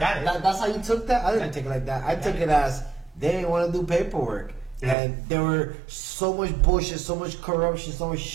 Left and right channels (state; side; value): drops out; left; at 5.0 s